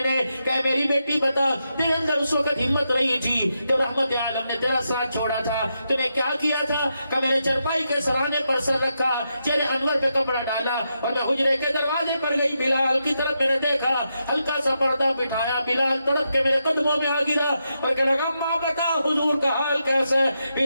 نے۔ کہ میری بیٹی بتا تیرے اندر اس وقت ہمت نہیں تھی جب رحمت عالم نے تیرا ساتھ چھوڑا تھا، تو نے کیا کیا تھا؟ کہ میں نے چرپائی کے سرانے پر سر رکھا، چہرے انور پہ کپڑا ڈالا اور میں حجرے کے دروازے پر گئی، بلال کی طرف میں نے دیکھا، ہلکا سا پردہ بٹھایا، بلال تڑپ کے میرے قدموں میں آ گرا اور کہنے لگا اماں بتا حضور کا حال کیسا ہے؟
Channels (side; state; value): both; inverted; correlation -0.84